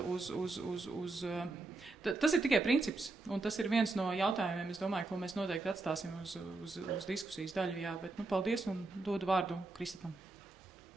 uz tas ir tikai princips, un tas ir viens no jautājumiem, es domāju, ko mēs noteikti atstāsim uz diskusijas daļu. Jā, bet paldies un dodu vārdu Kristapam.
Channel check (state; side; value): quieter; left; 3.3 dB